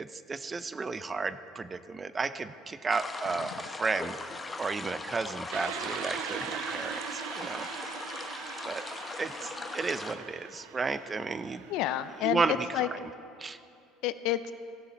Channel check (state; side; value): normal; both; correlation 0.66